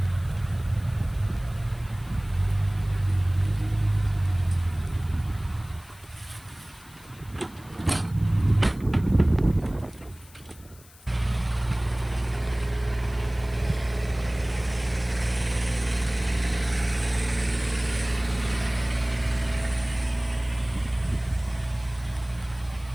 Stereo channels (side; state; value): left; noise; hiss, 24 dB below the sound